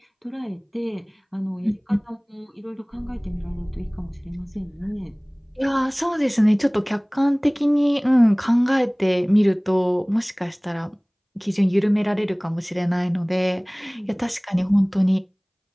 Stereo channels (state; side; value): identical; both; correlation 1.00